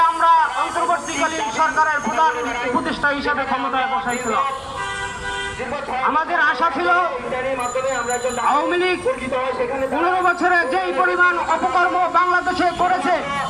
আমরা অন্তর্বর্তীকালীন সরকারের প্রধান উপদেষ্টা হিসেবে ক্ষমতায় বসাইছিলাম। আমাদের আশা ছিল আওয়ামী লীগ 15 বছরে যেই পরিমাণ অপকর্ম বাংলাদেশে করেছে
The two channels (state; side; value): identical; both; correlation 1.00